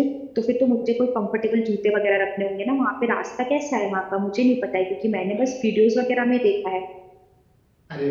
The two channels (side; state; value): both; identical; correlation 1.00